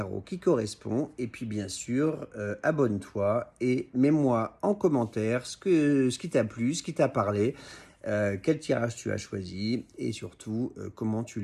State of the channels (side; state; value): both; identical; correlation 1.00